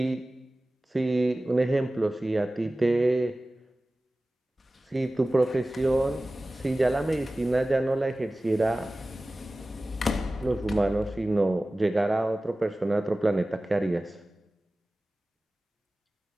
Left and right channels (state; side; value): normal; both; correlation 0.97